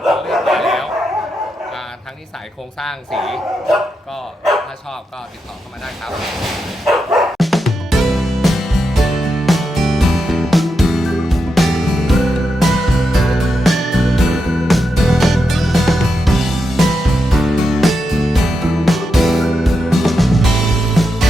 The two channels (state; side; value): normal; both; correlation 0.86